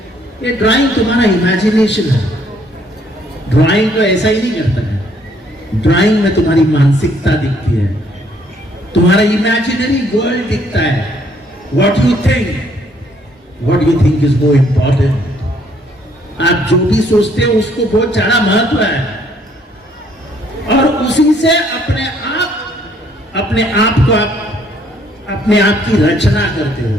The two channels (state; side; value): normal; both; correlation 0.65